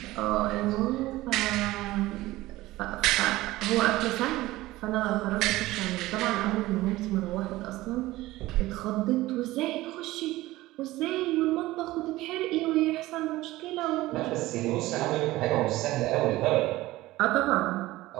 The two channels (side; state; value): left; quieter; 17.8 dB